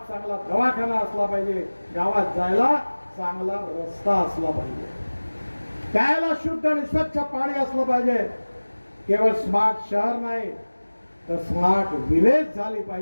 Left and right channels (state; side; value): inverted; both; correlation -1.00